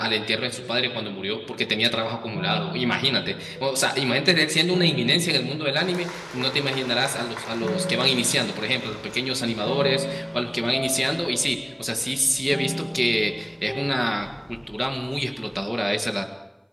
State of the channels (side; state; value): both; identical; correlation 1.00